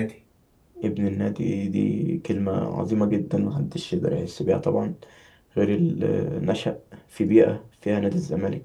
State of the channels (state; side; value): identical; both; correlation 1.00